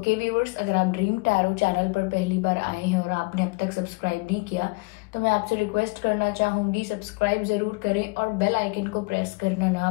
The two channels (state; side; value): quieter; right; 27.7 dB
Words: व्यूअर्स, अगर आप ड्रीम टैरो चैनल पर पहली बार आए हैं और आपने अब तक सब्सक्राइब नहीं किया तो मैं आपसे रिक्वेस्ट करना चाहूंगी, सब्सक्राइब जरूर करें और बेल आइकन को प्रेस करना ना